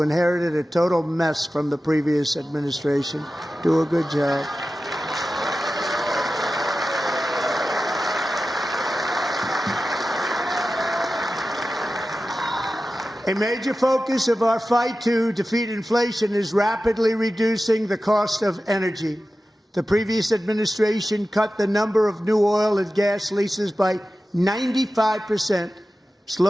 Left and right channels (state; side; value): normal; both; correlation 0.94